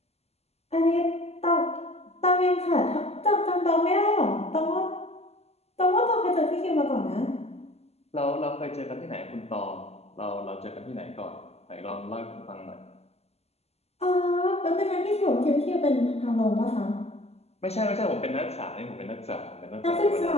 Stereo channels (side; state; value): right; late; 0.30 ms